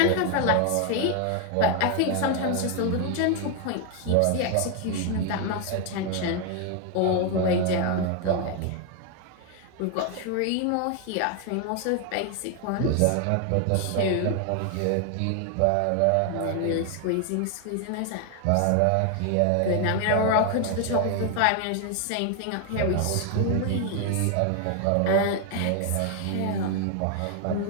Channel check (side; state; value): both; different; correlation 0.01